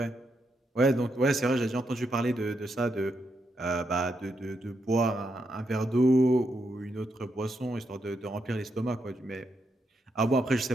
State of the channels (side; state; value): both; normal; correlation 0.81